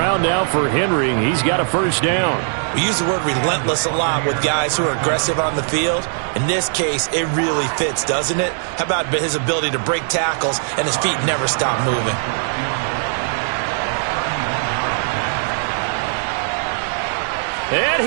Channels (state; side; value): silent; left; digital silence